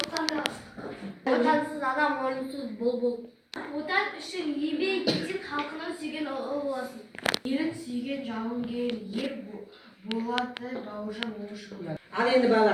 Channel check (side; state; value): both; identical; correlation 1.00